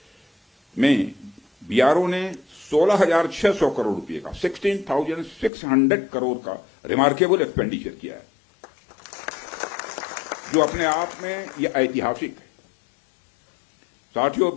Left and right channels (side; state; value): right; drops out; at 5.5 s